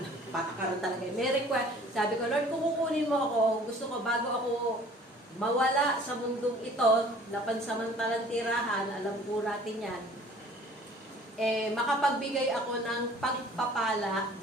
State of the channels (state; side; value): normal; both; correlation 0.50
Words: talaga. May request. Sabi ko, Lord, kung kukunin mo ako, gusto ko bago ako mawala sa mundong ito, na pansamantalang tirahan, alam po natin yan, makapagbigay ako ng pagpapala,